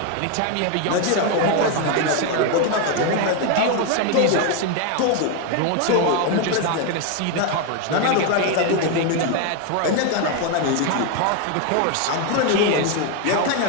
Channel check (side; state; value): both; different; correlation 0.01